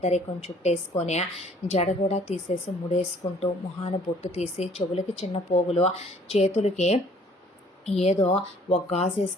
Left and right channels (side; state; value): both; normal; correlation 0.57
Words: చుట్టేసుకొని జడ కూడా తీసేసి ముడేసుకుంటూ, మొహాన బొట్టు తీసి, చెవులకి చిన్న పోగులు, చేతులకి ఏదో ఒక గాజు